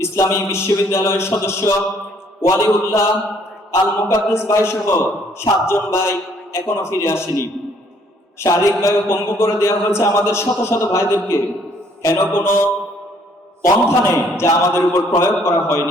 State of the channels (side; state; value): both; normal; correlation 0.63